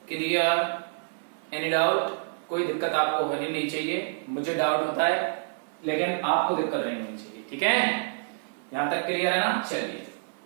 क्लियर। एनी डाउट, कोई दिक्कत आपको होनी नहीं चाहिए। मुझे डाउट होता है लेकिन आपको दिक्कत नहीं होनी चाहिए, ठीक है। यहां तक क्लियर है ना। चलिए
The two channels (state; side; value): silent; left; 60 dB below the other